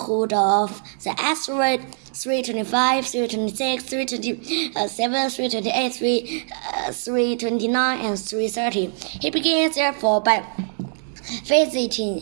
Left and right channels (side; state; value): left; silent; digital silence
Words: of the asteroid 325, 326, 327, 328, 329, and 330. He began, therefore, by